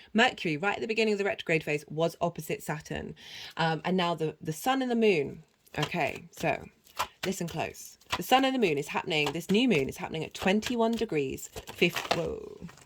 Mercury, right at the beginning of the retrograde phase, was opposite Saturn. And now the sun and the moon. Okay, so listen close. The sun and the moon is happening, this new moon is happening at 21 degrees,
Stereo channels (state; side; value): identical; both; correlation 1.00